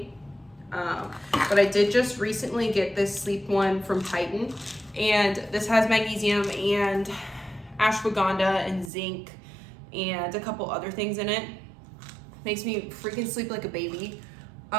But I did just recently get this sleep one from Titan, and this has magnesium and ashwagandha and zinc and a couple other things in it. Makes me freaking sleep like a baby.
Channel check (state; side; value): drops out; left; at 8.9 s